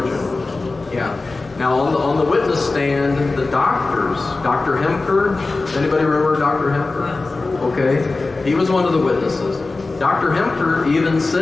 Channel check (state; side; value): quieter; right; 3.5 dB